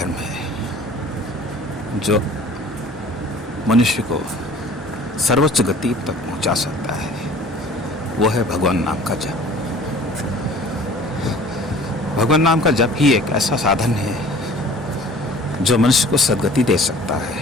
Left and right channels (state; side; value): normal; both; correlation 0.47